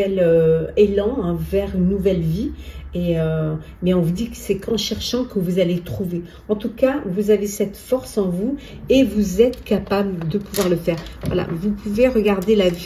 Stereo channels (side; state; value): both; identical; correlation 1.00